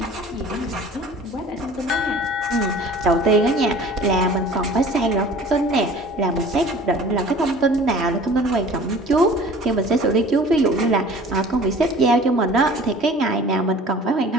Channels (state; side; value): normal; both; correlation 0.46